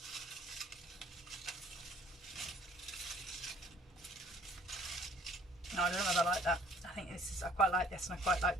No, I don't know whether I like that. I think this is, I quite like this, and I quite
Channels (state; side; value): normal; both; correlation 0.57